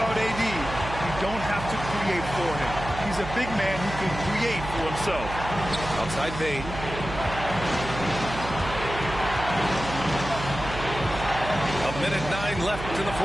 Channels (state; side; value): noise; right; hum, 9 dB below the sound